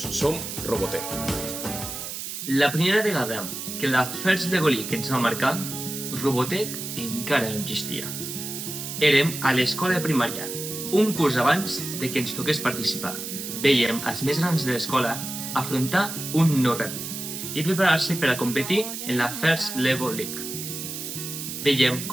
som Robotec. La primera vegada que la First Lego League ens va marcar, Robotec encara no existia. Érem a l'escola de primària, un curs abans de que ens toqués participar. Vèiem els més grans de l'escola afrontar un nou repte i preparar-se per a competir en la First Lego League. Vèiem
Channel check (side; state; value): right; noise; hiss, 7 dB below the sound